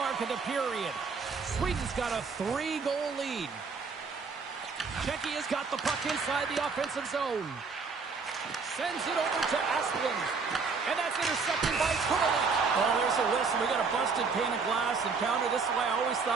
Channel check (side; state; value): left; quieter; 4.9 dB